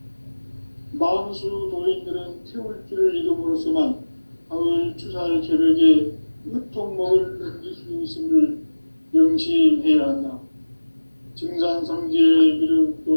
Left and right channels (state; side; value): inverted; both; correlation -1.00